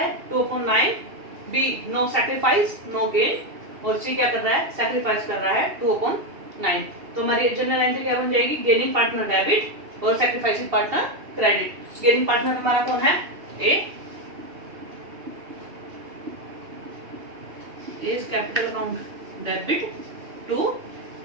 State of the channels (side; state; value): left; late; 2.7 ms